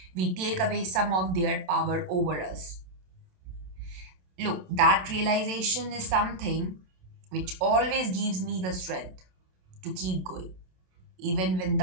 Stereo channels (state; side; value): late; left; 27 ms